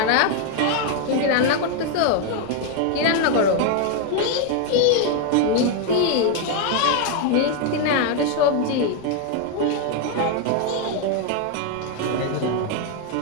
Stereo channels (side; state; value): both; different; correlation 0.01